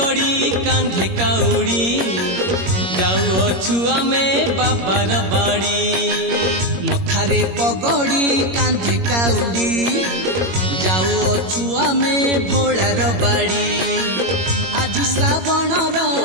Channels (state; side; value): late; left; 21 ms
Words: कांधे काउड़ी जाऊ अछु आमे बाबार बाड़ी। मथारे पगड़ी कांधे काउड़ी जाऊ अछु आमे भोलार बाड़ी। आज श्रावणर